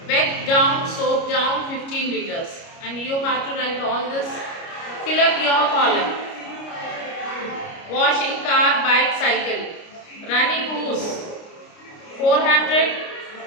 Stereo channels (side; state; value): right; late; 29 ms